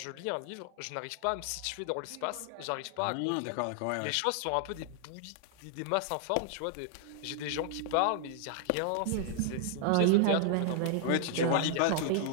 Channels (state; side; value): different; both; correlation 0.00